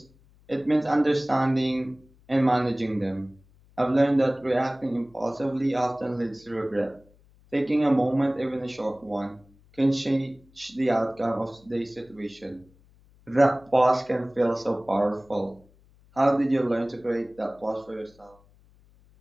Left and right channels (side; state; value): left; noise; hum, 29 dB below the sound